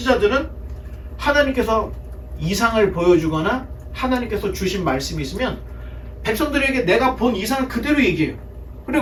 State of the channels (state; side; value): identical; both; correlation 1.00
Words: 하나님께서 이상을 보여주거나 하나님께서 주신 말씀이 있으면 백성들에게 내가 본 이상을 그대로 얘기해요.